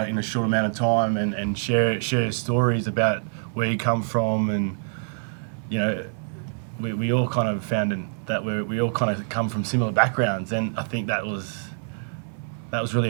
in a short amount of time and share stories about where you come from, and we all kind of found that we all kind of come from similar backgrounds, and I think that was really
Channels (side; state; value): left; silent; 62 dB below the other